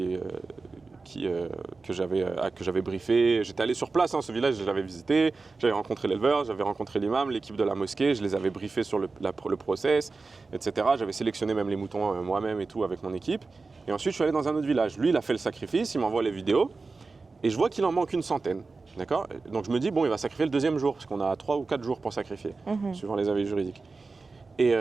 j'avais briefé, j'étais allé sur place, hein, ce village, je l'avais visité, j'avais rencontré l'éleveur, j'avais rencontré l'imam, l'équipe de la mosquée, je les avais briefés sur le process, etc. J'avais sélectionné même les moutons moi-même et tout avec mon équipe. Et ensuite, je suis allé dans un autre village. Lui, il a fait le sacrifice, il m'envoie les vidéos, et je vois qu'il en manque une centaine. D'accord? Donc je me dis, bon, il va sacrifier le 2e jour, parce qu'on a 3 ou 4 jours pour sacrifier, suivant les avis juridiques.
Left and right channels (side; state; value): left; quieter; 4.0 dB